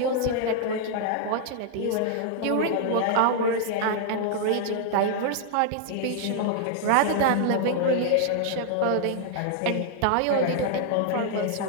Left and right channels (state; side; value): different; both; correlation -0.01